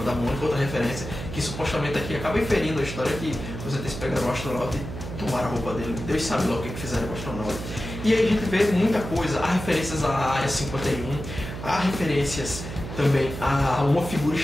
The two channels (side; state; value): right; noise; hum, 8 dB below the sound